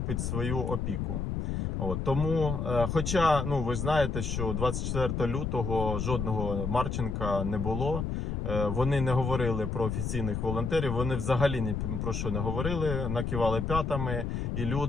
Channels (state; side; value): noise; left; rumble, 2 dB below the sound